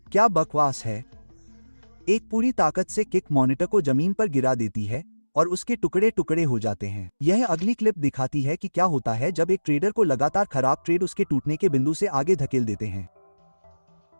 क्या बकवास है? एक पूरी ताकत से किक मॉनिटर को जमीन पर गिरा देती है और उसके टुकड़े टुकड़े हो जाते हैं। यह अगली क्लिप दिखाती है कि क्या होता है जब एक ट्रेडर को लगातार खराब ट्रेड उसके टूटने के बिंदु से आगे धकेल देते हैं।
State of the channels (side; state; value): both; inverted; correlation -1.00